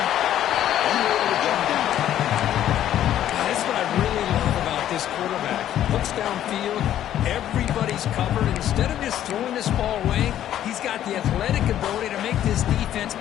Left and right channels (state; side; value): quieter; right; 11.6 dB